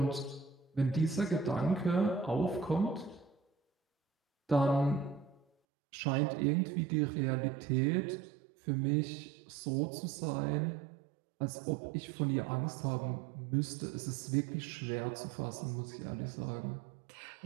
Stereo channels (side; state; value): left; drops out; at 5.5 s